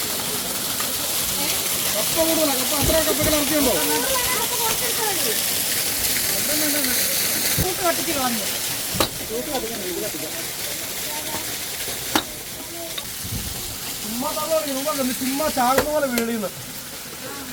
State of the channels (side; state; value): both; identical; correlation 1.00